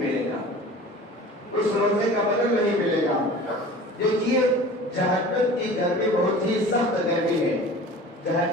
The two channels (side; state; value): both; normal; correlation 0.41